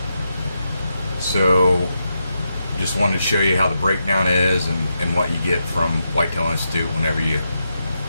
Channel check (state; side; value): inverted; both; correlation -0.85